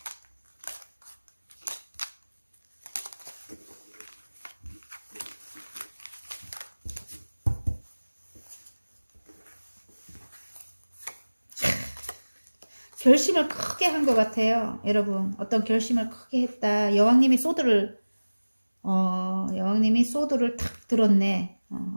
결심을 크게 한 것 같아요, 여러분. 어떤 결심을 크게 했다. 여왕님이 소드를 탁 들었네.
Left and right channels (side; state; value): both; inverted; correlation -1.00